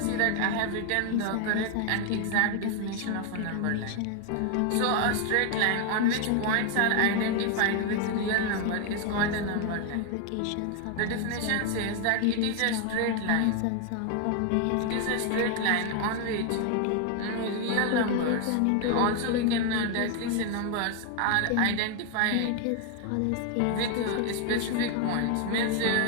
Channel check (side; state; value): both; different; correlation 0.01